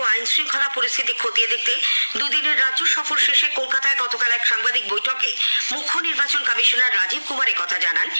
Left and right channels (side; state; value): both; inverted; correlation -1.00